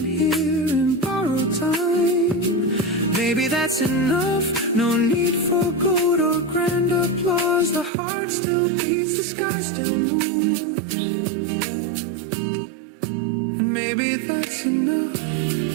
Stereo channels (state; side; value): drops out; left; at 7.9 s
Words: here in borrowed time. Maybe that's enough. No need for gold or grand applause. The heart still beats, the sky still moves, and maybe that's enough.